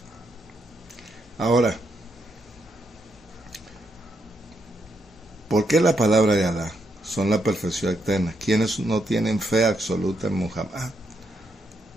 Ahora, ¿por qué la palabra de Alá son la perfección eterna? ¿Quiénes no tienen fe absoluta en Muhammad?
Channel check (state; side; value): normal; both; correlation 0.79